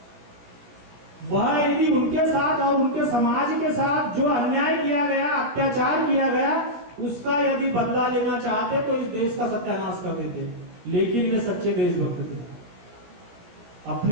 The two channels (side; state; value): left; late; 17 ms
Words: वह यदि उनके साथ और उनके समाज के साथ जो अन्याय किया गया, अत्याचार किया गया, उसका यदि बदला लेना चाहते तो इस देश का सत्यानाश कर देते। लेकिन वे सच्चे देशभक्त थे,